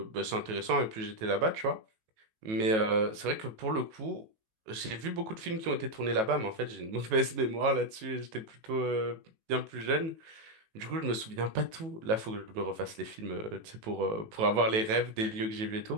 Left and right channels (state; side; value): late; left; 18 ms